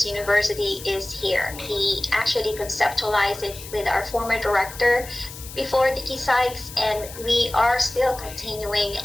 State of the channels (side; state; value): left; noise; hiss, 14 dB below the sound